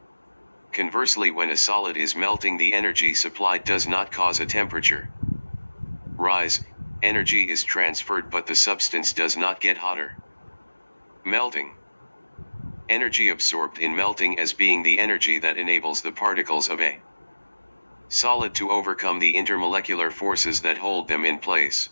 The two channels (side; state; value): both; inverted; correlation -1.00